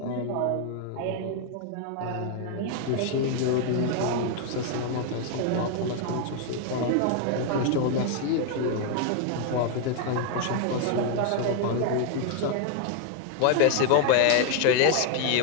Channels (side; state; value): both; different; correlation 0.00